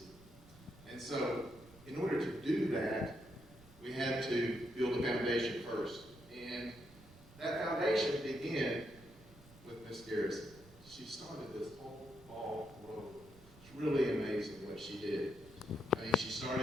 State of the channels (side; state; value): right; noise; rumble, 23 dB below the sound